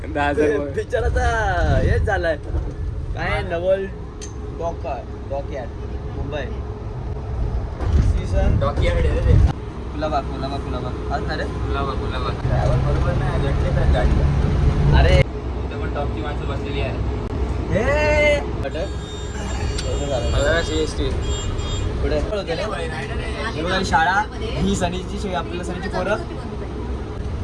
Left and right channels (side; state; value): both; identical; correlation 1.00